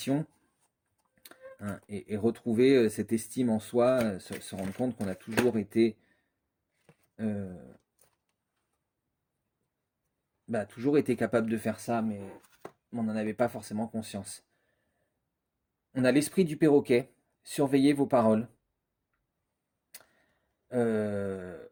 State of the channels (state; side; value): identical; both; correlation 1.00